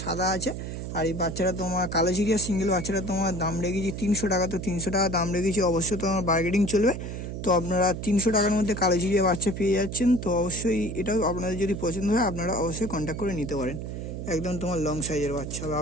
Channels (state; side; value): noise; right; hum, 6 dB below the sound